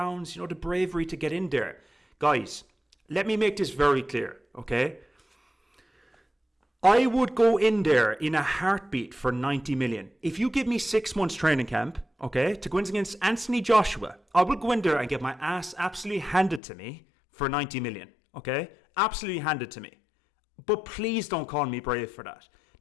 You know, the bravery to get in there. Guys, let me make this very clear, okay? I would go in there in a heartbeat for 90 million. If you give me 6 months training camp, okay, to go in against Anthony Joshua, I will go in there and get my ass absolutely handed to me for 90 million, okay? Absolutely handed to me. But please don't call me brave for that.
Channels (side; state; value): right; drops out; at 16.6 s